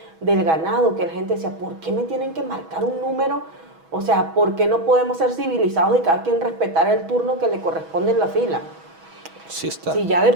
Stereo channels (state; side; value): late; left; 6.2 ms